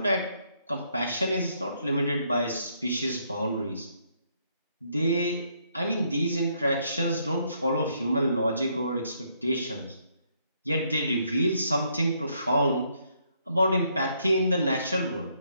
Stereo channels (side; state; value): both; inverted; correlation -0.72